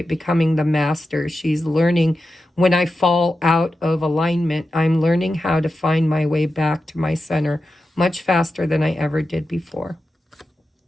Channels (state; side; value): normal; both; correlation 0.91